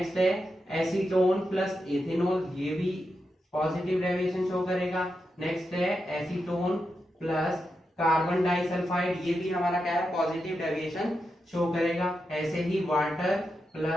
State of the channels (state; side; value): normal; both; correlation 0.87